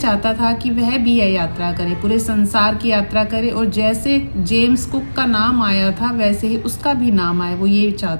था कि वह भी यह यात्रा करे, पूरे संसार की यात्रा करे और जैसे जेम्स कुक का नाम आया था वैसे ही उसका भी नाम आए, वो ये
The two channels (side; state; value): both; inverted; correlation -1.00